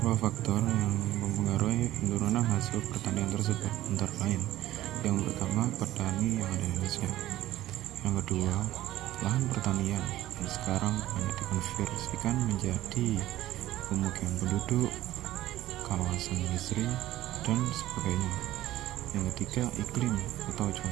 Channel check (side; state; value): left; quieter; 14.7 dB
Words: faktor yang mempengaruhi penurunan hasil pertanian tersebut antara lain: yang pertama, petani yang ada di Indonesia; yang kedua, lahan pertanian yang sekarang banyak dikonversikan menjadi pemukiman penduduk, kawasan industri, dan sebagainya; yang ketiga, iklim atau